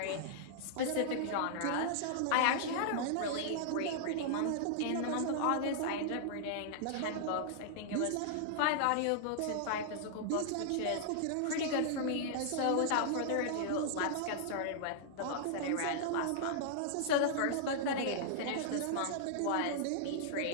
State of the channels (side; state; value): both; different; correlation -0.01